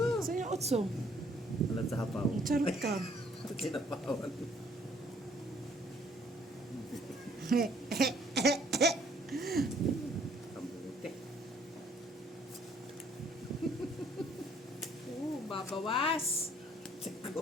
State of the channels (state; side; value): normal; both; correlation 0.62